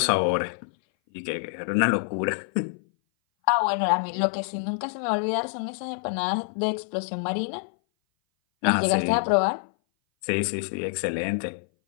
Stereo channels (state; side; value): silent; right; 58 dB below the other